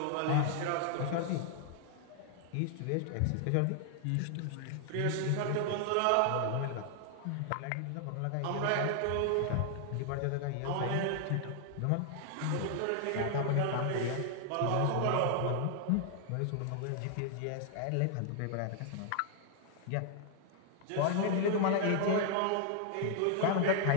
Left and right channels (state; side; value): different; both; correlation 0.00